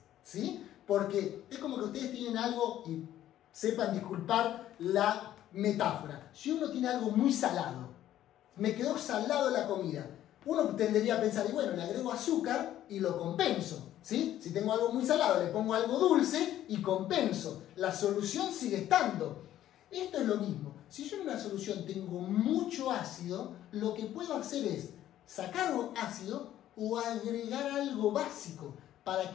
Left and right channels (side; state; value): right; quieter; 12.5 dB